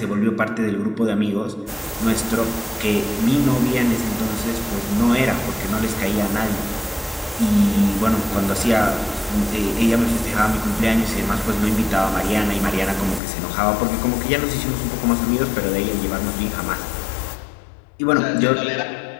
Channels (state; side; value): drops out; right; at 13.2 s